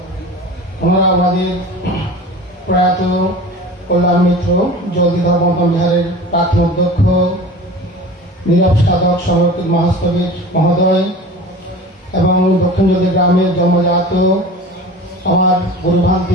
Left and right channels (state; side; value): normal; both; correlation 0.37